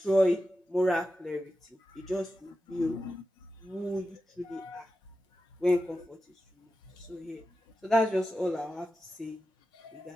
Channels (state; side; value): normal; both; correlation 0.91